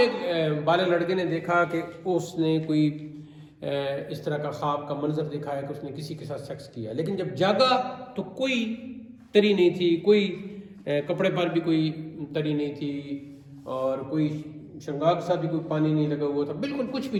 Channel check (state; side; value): identical; both; correlation 1.00